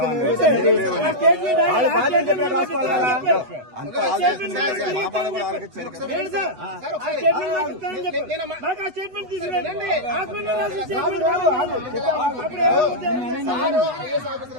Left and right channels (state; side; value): late; left; 8.1 ms